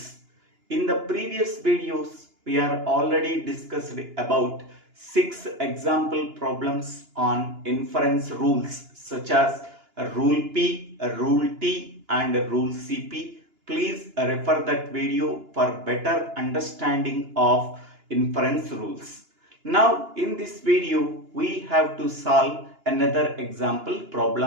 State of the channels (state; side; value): late; left; 2.9 ms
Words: In the previous videos, we are already discussed about 6 example problems on inference rules such as rule P, rule T and rule CP. Please refer that video for better understanding of inference rules. Now in this video we have to solve another example